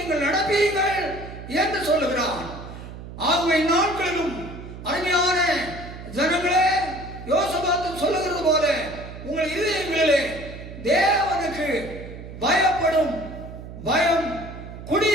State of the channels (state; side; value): noise; right; hum, 12 dB below the sound